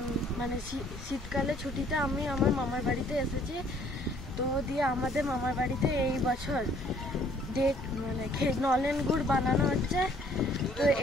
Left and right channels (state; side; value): normal; both; correlation 0.60